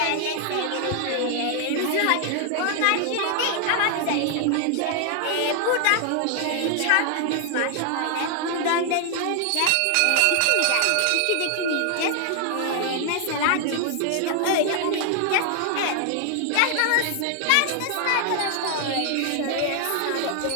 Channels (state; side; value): different; both; correlation 0.00